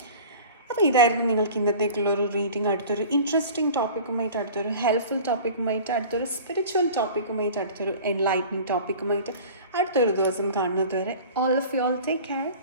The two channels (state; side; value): inverted; both; correlation -0.41